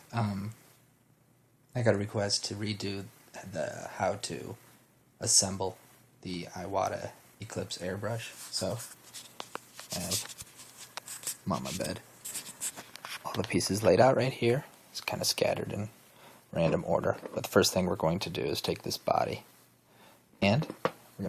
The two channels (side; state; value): both; identical; correlation 1.00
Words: Um, I got a request to redo the how to assemble the Iwata Eclipse airbrush. So I'm on my bed. All the pieces laid out right here. It's kind of scattered in random order. But the first thing we're going to do is take this body and we're